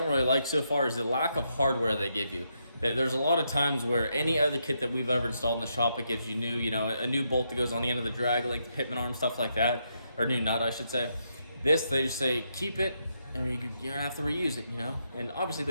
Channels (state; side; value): inverted; both; correlation -0.80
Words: really like so far is the lack of hardware they give you. There's a lot of times where any other kit that we've ever installed in the shop, it gives you new, you know, a new bolt that goes on the end of the drag, like the pitman arm, stuff like that, or new nut, I should say. This, they just say, keep it, and you don't have to reuse it, you know? And obviously